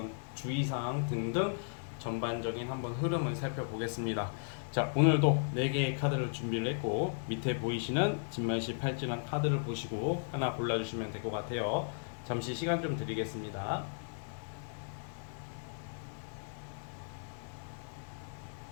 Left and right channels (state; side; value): silent; right; digital silence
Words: 주의사항 등등 전반적인 한번 흐름을 살펴보겠습니다. 자, 오늘도 4개의 카드를 준비를 했고 밑에 보이시는 진말시 팔찌랑 카드를 보시고 하나 골라주시면 될 것 같아요. 잠시 시간 좀 드리겠습니다.